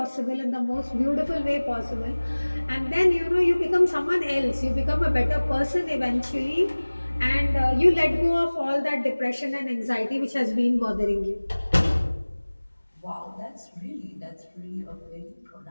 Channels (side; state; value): both; inverted; correlation -1.00